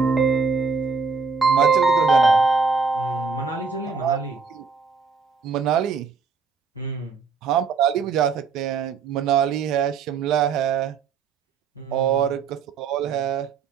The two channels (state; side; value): quieter; left; 5.1 dB